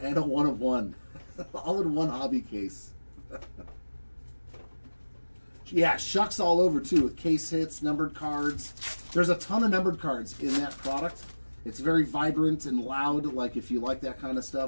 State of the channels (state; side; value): inverted; both; correlation -1.00